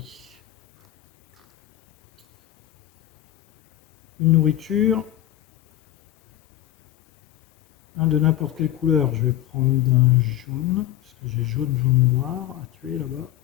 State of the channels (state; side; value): quieter; right; 13.6 dB